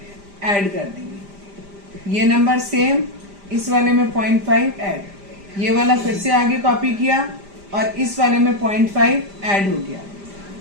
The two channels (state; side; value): late; left; 5.0 ms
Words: ऐड कर देंगे, ये नंबर सेम, इस वाले में 0.5 ऐड, ये वाला फिर से आगे कॉपी किया और इस वाले में 0.5 ऐड हो गया।